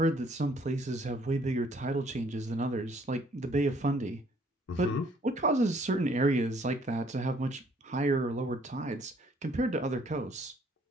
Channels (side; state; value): both; normal; correlation 0.62